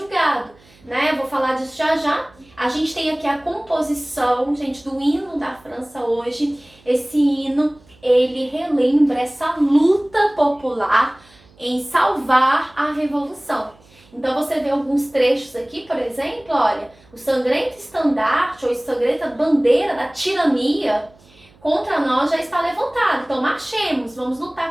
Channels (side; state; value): right; noise; hum, 29 dB below the sound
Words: né? Eu vou falar disso já já. A gente tem aqui a composição, gente, do hino da França hoje. Esse hino, ele relembra essa luta popular em salvar a revolução. Então você vê alguns trechos aqui, por exemplo, olha, o sangrento estandarte ou sangrenta bandeira da tirania contra nós já está levantado. Então marchemos, vamos